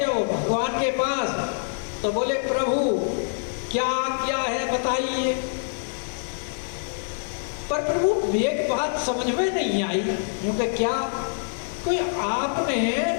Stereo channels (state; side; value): silent; right; digital silence